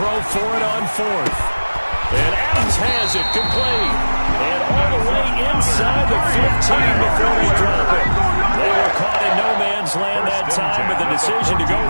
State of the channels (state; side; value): inverted; both; correlation -1.00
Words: for it on 4th. And Adams has it complete. And all the way inside the 15 before they drop it. They were caught in no man's land that time, but the decision to go